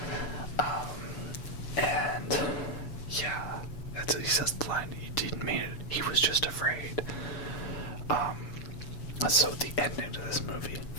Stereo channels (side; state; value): right; late; 7.1 ms